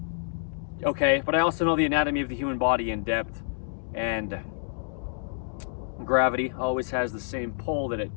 Okay, but I also know the anatomy of the human body in depth, and gravity always has the same pull that it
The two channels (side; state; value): right; silent; digital silence